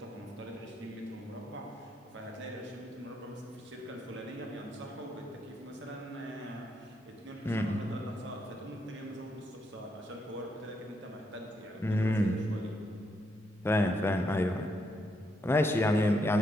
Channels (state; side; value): normal; both; correlation 0.78